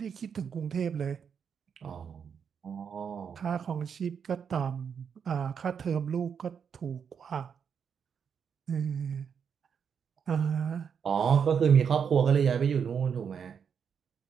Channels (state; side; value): quieter; left; 7.1 dB